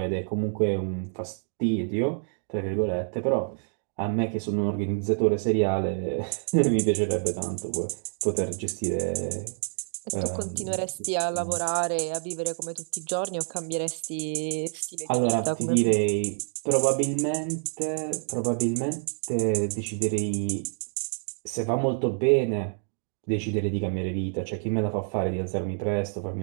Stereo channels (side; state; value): left; silent; 60 dB below the other